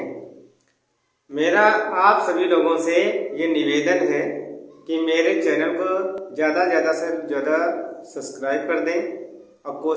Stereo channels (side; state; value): both; identical; correlation 1.00